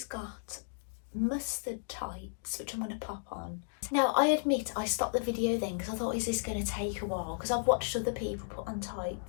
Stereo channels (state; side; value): silent; right; digital silence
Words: got mustard tights, which I'm going to pop on. Now, I admit I stopped the video then because I thought, is this going to take a while? Because I've watched other people put on